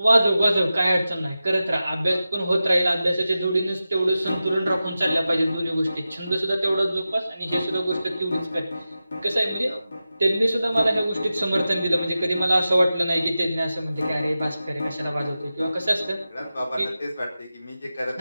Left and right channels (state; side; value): inverted; both; correlation -0.93